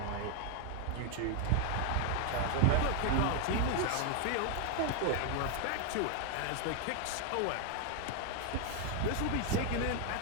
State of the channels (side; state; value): both; different; correlation 0.00